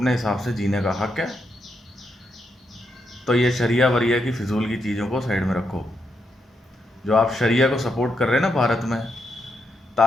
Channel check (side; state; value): both; normal; correlation 0.81